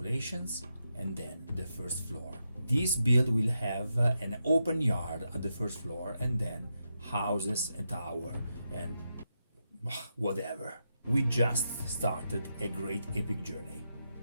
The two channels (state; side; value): inverted; both; correlation -0.85